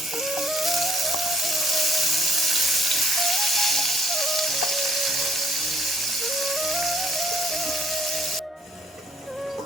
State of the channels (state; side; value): normal; both; correlation 0.62